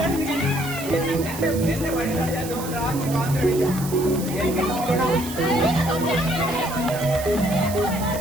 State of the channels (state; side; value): noise; right; hiss, 11 dB below the sound